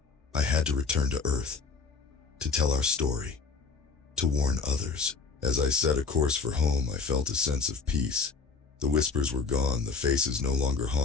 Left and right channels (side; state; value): right; quieter; 4.7 dB